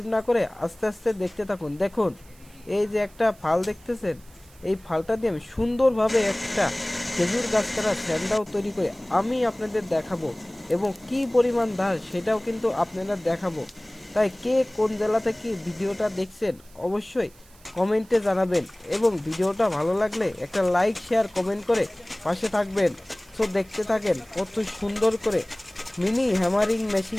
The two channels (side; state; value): right; noise; hiss, 26 dB below the sound